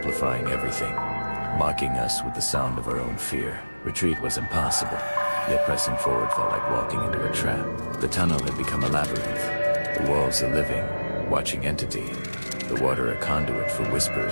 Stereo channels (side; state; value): both; inverted; correlation -1.00